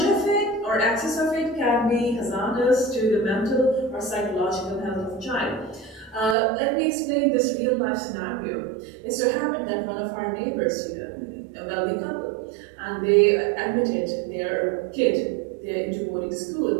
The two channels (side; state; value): left; drops out; at 6.4 s